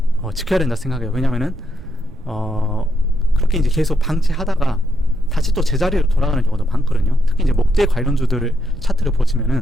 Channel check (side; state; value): right; noise; rumble, 17 dB below the sound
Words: 지켜야 된다 생각해요. 왜냐면은 그렇게 이제 계속 방치하다가 다시 또 제자리로 돌아가는 경우도 많거든요. 특히 이제 목재 관련주들 차트를